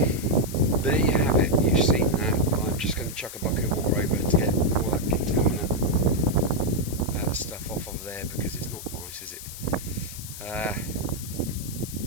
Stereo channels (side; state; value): left; noise; hiss, 11 dB below the sound